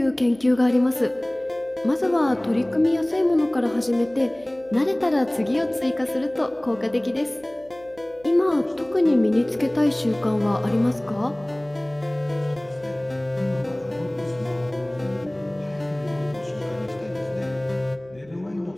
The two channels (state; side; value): noise; right; hum, 25 dB below the sound